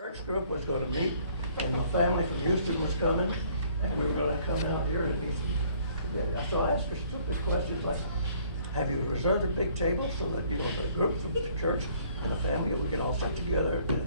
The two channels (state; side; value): inverted; both; correlation -0.60